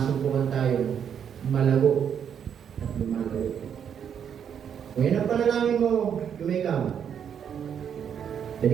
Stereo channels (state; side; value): quieter; left; 8.2 dB